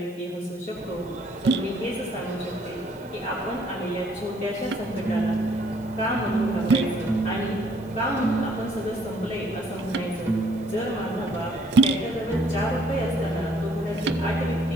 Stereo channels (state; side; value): noise; right; hiss, 28 dB below the sound